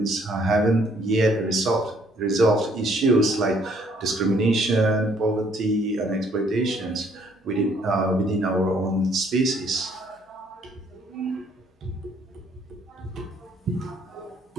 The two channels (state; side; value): normal; both; correlation 0.64